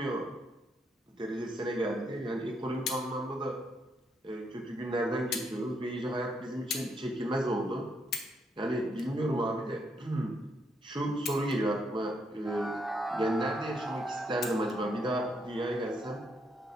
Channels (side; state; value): both; normal; correlation 0.76